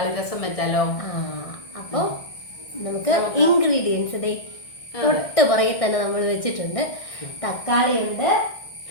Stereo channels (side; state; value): right; late; 1.6 ms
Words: രസം വെച്ചാലോ? അപ്പോൾ നമുക്ക് ഇൻഗ്രീഡിയൻസ് തൊട്ട് പുറകെ തന്നെ നമ്മൾ വെച്ചിട്ടുണ്ട്. തക്കാളി ഉണ്ട്,